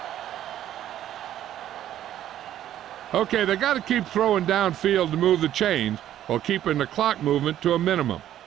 Okay, they got to keep throwing downfield to move the chains while keeping the clock movement to a minimum.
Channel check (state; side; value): quieter; left; 11.8 dB